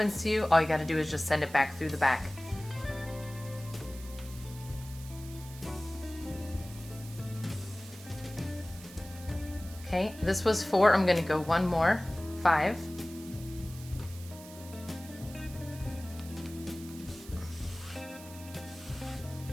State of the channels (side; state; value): right; noise; hiss, 17 dB below the sound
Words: to you, all you got to do is just send it back through the back. Okay, this was 4. I'm going to go 1 more. 5.